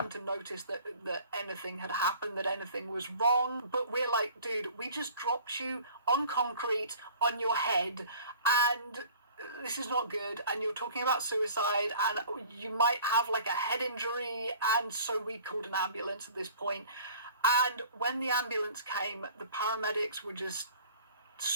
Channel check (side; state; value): both; inverted; correlation -0.49